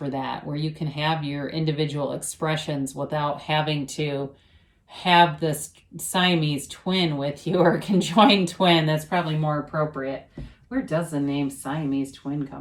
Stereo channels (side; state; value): both; identical; correlation 1.00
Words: that, where you can have your individual expressions without having to have this Siamese twin with you, or conjoined twin. That's probably more appropriate. Where does the name Siamese twin